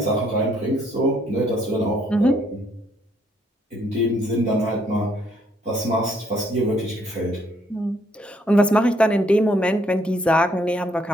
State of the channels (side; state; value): both; normal; correlation 0.68